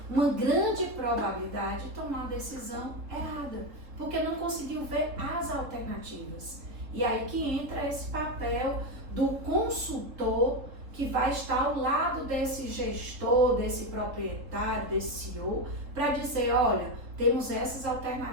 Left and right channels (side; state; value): left; late; 3.7 ms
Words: uma grande probabilidade de tomar a decisão errada, porque não conseguiu ver as alternativas. E aí que entra esse papel do consultor que vai estar ao lado desse gestor, desse proprietário, desse CEO, para dizer, olha, temos essas